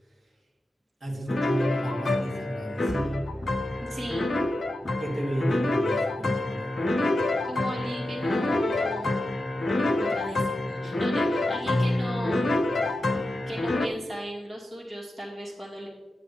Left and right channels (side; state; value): both; normal; correlation 0.91